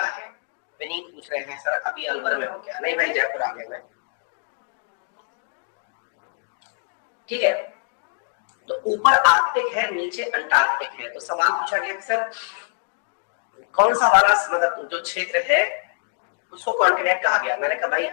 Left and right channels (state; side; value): silent; right; 63 dB below the other